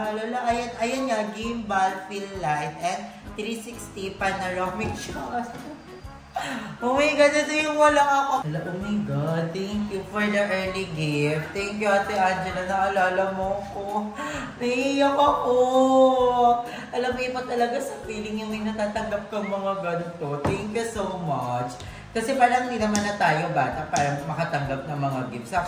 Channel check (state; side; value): identical; both; correlation 1.00